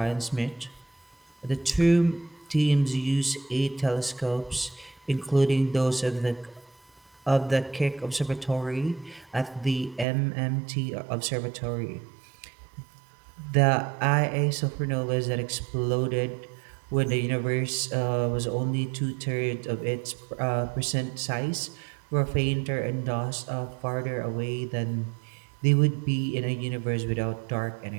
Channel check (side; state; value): left; drops out; at 10.1 s